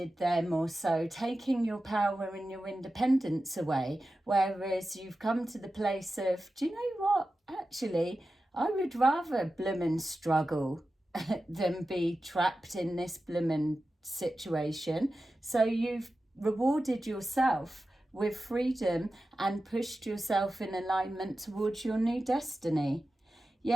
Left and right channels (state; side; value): normal; both; correlation 0.93